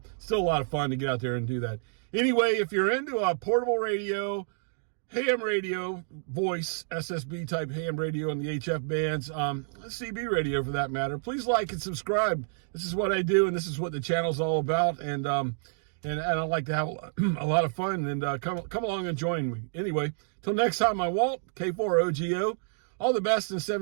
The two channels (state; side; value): silent; left; digital silence